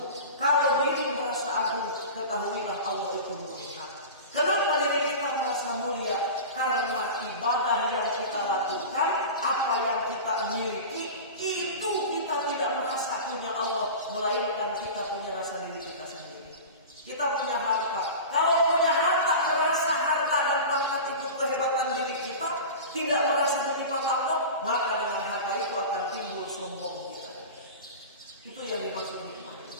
Kalau diri merasa agung, ketahuilah Allah itu mulia. Kenapa diri kita merasa mulia? Karena ibadah yang kita lakukan, apa yang kita miliki, itu kita tidak merasa punya Allah, melainkan kita punya rasa diri kita sendiri. Kita punya harta. Kalau punya harta, merasa harta dan pangkat itu kehebatan diri kita, tidak merasa titipan Allah, maka dengan harta itu akan timbul sombong kita. Itu yang dimaksud nikmat.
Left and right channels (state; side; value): inverted; both; correlation -0.31